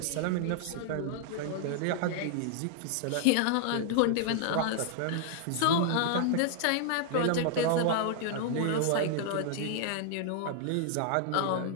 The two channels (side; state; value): both; different; correlation 0.00